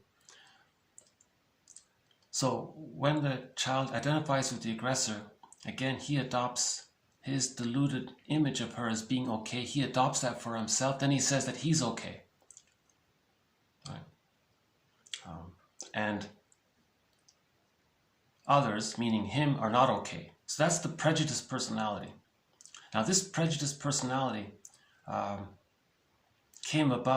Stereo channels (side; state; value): both; identical; correlation 1.00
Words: So when the child identifies with the aggressor, again, he adopts his deluded image of her as being okay. He adopts that for himself. Then he says that he's okay. Right? And others, meaning him, are not okay. So that's the prejudiced personality. Now this prejudiced personality came